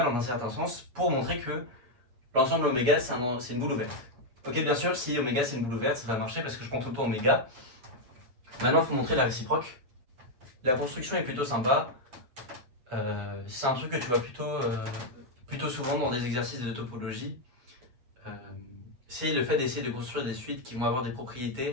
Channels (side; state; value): left; late; 8.7 ms